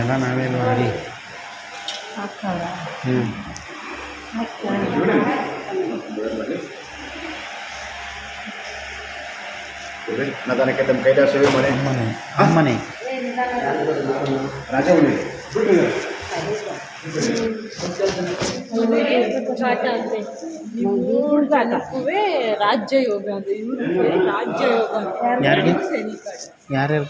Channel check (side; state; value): both; identical; correlation 1.00